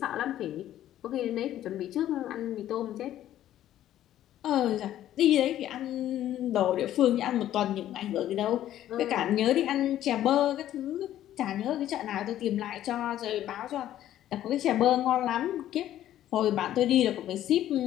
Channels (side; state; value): right; quieter; 12.4 dB